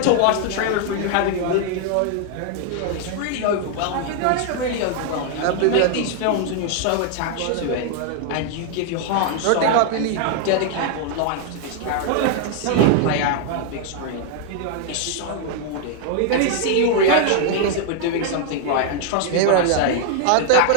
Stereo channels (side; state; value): both; different; correlation 0.00